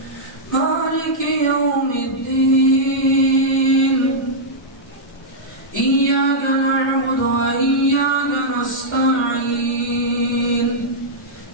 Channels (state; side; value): normal; both; correlation -0.08